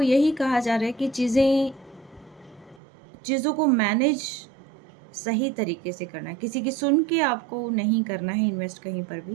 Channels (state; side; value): drops out; left; at 2.8 s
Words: यही कहा जा रहा है कि चीज़ों को मैनेज सही तरीके से करना है, किसी की सुन के आपको नहीं करना है इन्वेस्ट कहीं पर